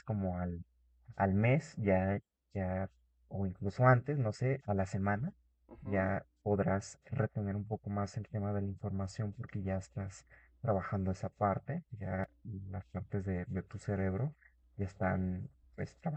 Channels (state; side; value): identical; both; correlation 1.00